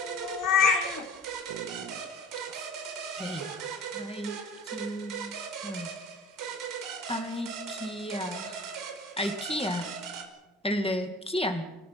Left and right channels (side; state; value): both; normal; correlation 0.43